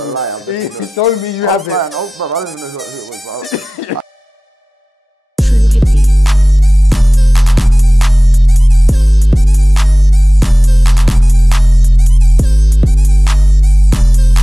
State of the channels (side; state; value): both; normal; correlation 0.97